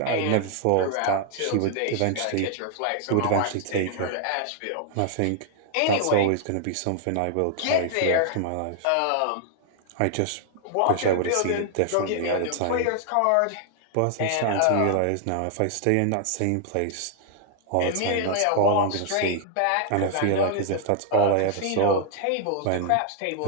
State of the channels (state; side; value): different; both; correlation 0.00